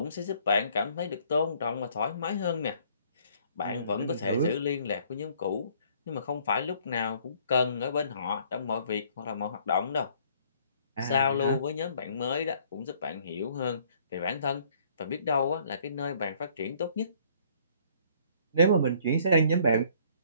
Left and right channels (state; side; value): inverted; both; correlation -0.60